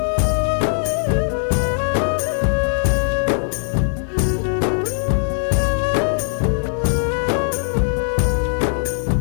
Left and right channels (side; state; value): right; silent; 56 dB below the other